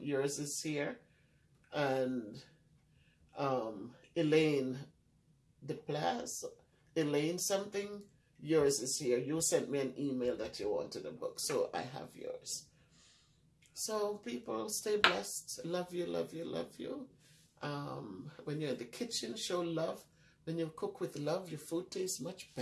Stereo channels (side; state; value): both; identical; correlation 1.00